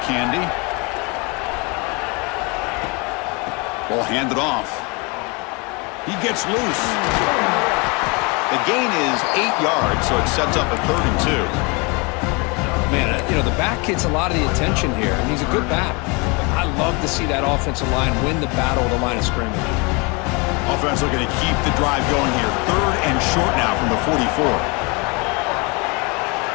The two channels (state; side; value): quieter; right; 29.5 dB